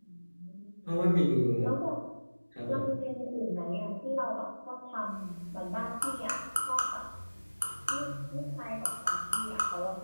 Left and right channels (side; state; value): both; inverted; correlation -1.00